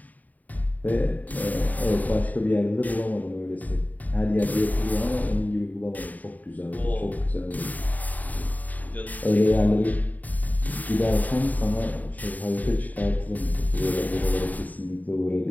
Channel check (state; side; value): late; right; 0.078 ms